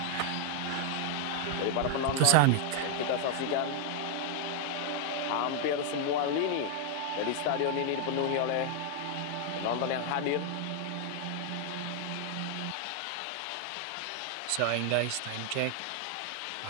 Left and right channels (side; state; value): both; different; correlation 0.00